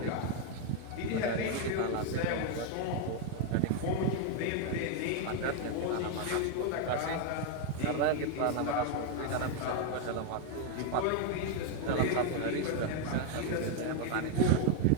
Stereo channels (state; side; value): different; both; correlation 0.01